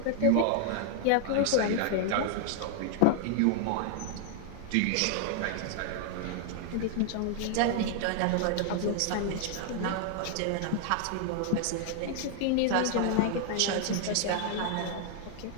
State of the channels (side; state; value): both; different; correlation 0.00